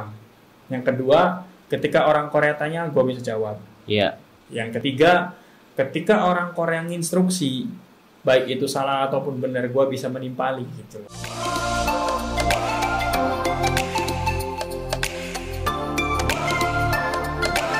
Yang kedua, ketika orang Korea tanya gue bisa jawab. Iya. Yang ketiga, ketika orang Korea nginstruksi, baik itu salah ataupun benar, gue bisa menimpali gitu loh.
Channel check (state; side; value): identical; both; correlation 1.00